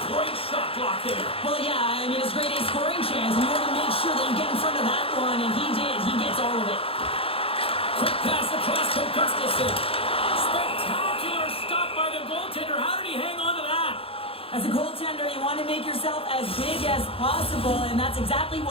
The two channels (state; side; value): late; right; 0.27 ms